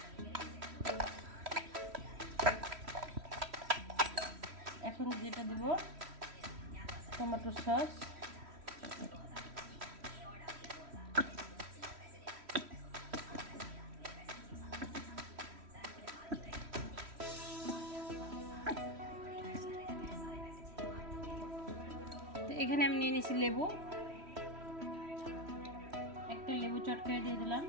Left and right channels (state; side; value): late; left; 3.1 ms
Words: এখন যেটা দেব টমেটো সস, এখানে আমি নিয়ে নিয়েছি লেবু, একটা লেবু চটকায় দিয়ে দিলাম।